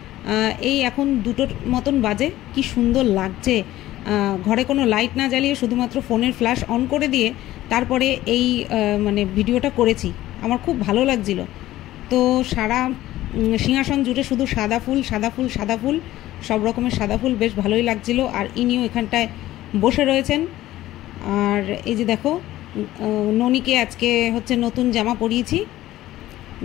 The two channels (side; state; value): right; quieter; 15.2 dB